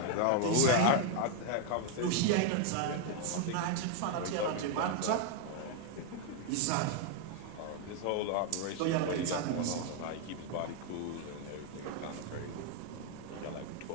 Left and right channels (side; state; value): both; different; correlation 0.00